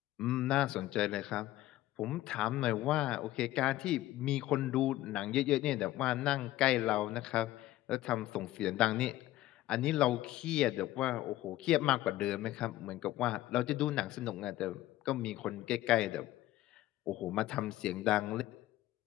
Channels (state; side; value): quieter; right; 15.4 dB